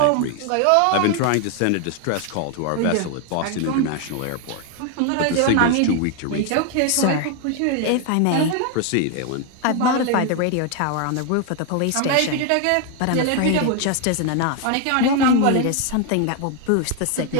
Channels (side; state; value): both; different; correlation 0.01